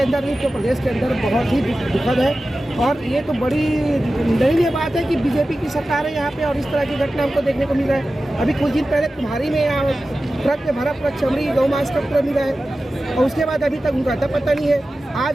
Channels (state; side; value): normal; both; correlation 0.94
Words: अंदर नहीं तो प्रदेश के अंदर बहुत ही दुखद है। और ये तो बड़ी दयनीय बात है कि बीजेपी की सरकार है यहाँ पे और इस तरह की घटना हमको देखने को मिल रहा है। अभी कुछ दिन पहले तुम्हारी में यहाँ ट्रक में भरा पूरा चमड़ी गौ मांस का पूरा मिला है और उसके बाद अभी तक उनका अता पता नहीं है।